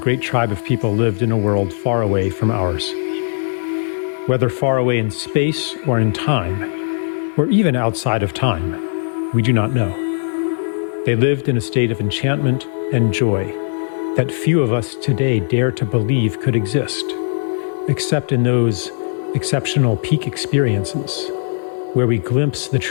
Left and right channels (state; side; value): silent; right; digital silence